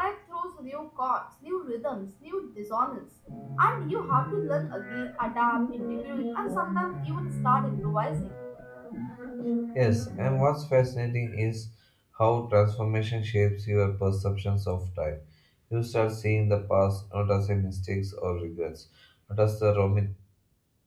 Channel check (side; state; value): both; identical; correlation 1.00